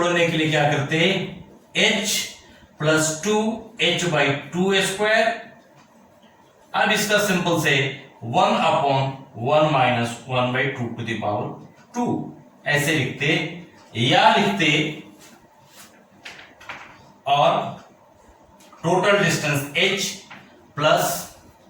के लिए क्या करते हैं, h plus 2h by 2 square. अब इसका सिंपल से 1 upon 1 minus 1 by 2 to the power 2 ऐसे लिखते, या लिखते और टोटल डिस्टेंस h प्लस,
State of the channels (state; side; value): identical; both; correlation 1.00